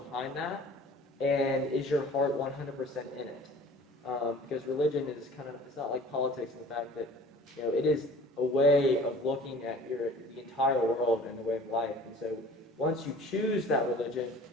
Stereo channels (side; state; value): both; normal; correlation 0.46